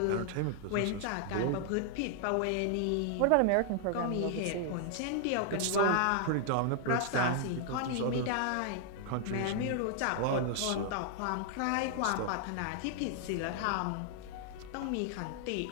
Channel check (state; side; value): different; both; correlation 0.00